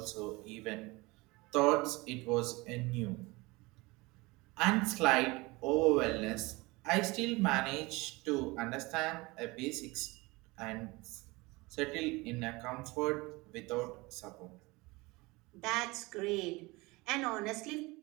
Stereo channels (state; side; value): quieter; left; 23.4 dB